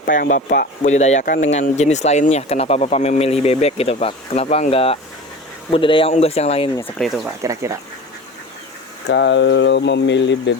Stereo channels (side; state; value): both; normal; correlation 0.35